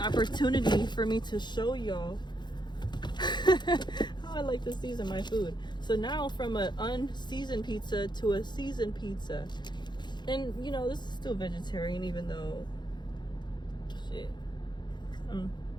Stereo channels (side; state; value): right; late; 0.21 ms